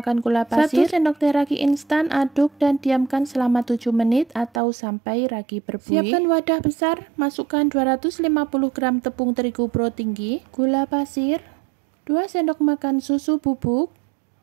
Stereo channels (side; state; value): left; drops out; at 4.6 s